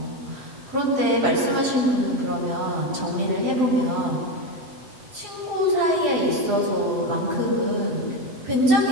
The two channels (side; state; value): left; late; 7.9 ms